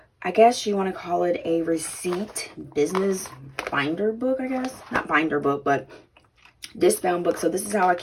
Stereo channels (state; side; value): identical; both; correlation 1.00